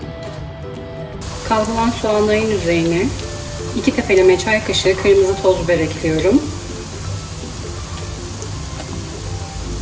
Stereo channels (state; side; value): identical; both; correlation 1.00